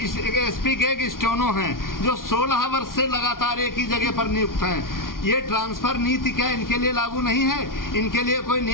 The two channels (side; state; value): right; late; 0.91 ms